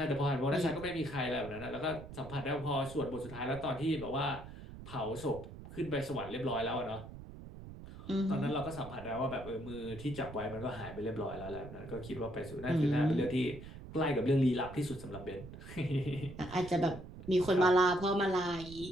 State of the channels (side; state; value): right; noise; rumble, 13 dB below the sound